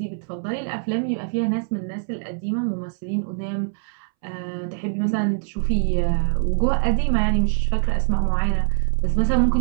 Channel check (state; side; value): silent; left; 63 dB below the other